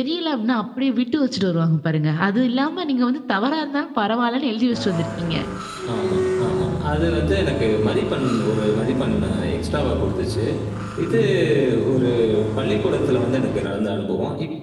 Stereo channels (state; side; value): identical; both; correlation 1.00